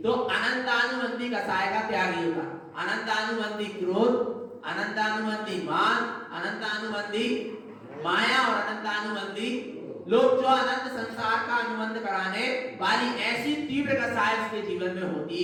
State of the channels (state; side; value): identical; both; correlation 1.00